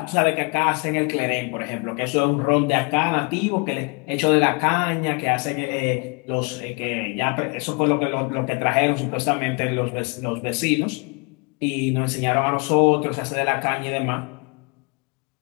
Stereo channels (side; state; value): right; quieter; 32.9 dB